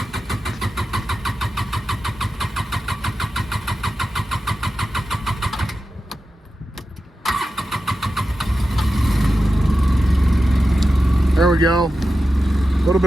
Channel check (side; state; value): both; normal; correlation 0.92